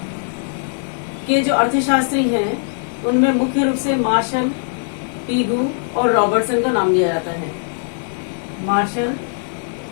के जो अर्थशास्त्री हैं उनमें मुख्य रूप से मार्शल, पीगू और रॉबर्टसन का नाम लिया जाता है। मार्शल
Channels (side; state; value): right; silent; digital silence